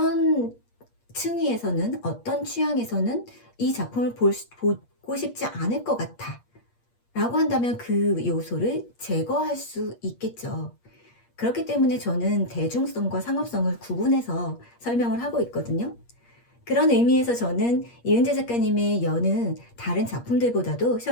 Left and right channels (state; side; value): late; right; 8.5 ms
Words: 층위에서는, 어떤 취향에서는 이 작품을 보고 싶지 않을 것 같아 라고 한다면 그 요소를 제거할 수 있겠죠. 그렇기 때문에 저는 대중성과 상업성을 구분해서 설명을 하고 있거든요. 그런 의미에서 저는 이은재 작가님의 여는 다른 작품들보다도